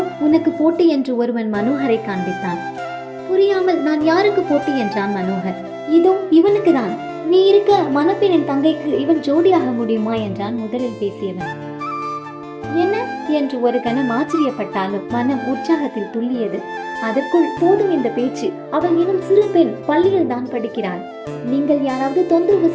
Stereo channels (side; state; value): both; identical; correlation 1.00